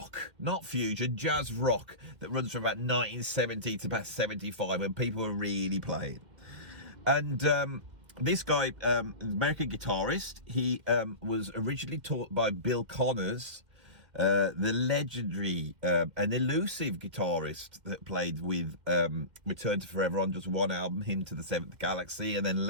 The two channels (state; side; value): late; left; 2.1 ms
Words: not fusion, jazz rock that runs from about 1970 to about 75 when people were really playing. And this guy, American guitarist, he was originally taught by Bill Connors, the legendary and elusive guitarist that played with Return to Forever on just one album, Hymn to the Seventh Galaxy, and then